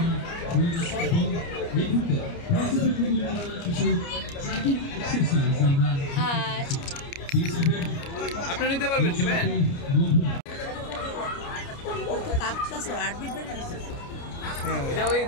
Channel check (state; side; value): late; right; 29 ms